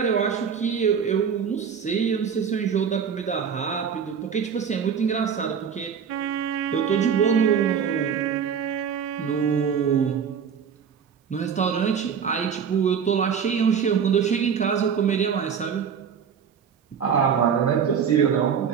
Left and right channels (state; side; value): quieter; left; 7.2 dB